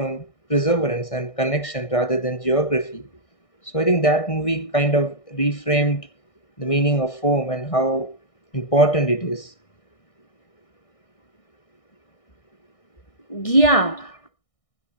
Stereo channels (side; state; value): right; late; 1.6 ms